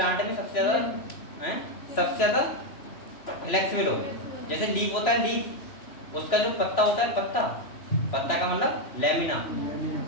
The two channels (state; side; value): late; right; 3.0 ms